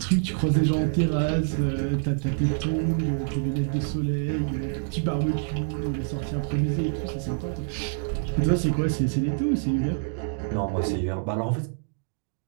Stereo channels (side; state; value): left; silent; digital silence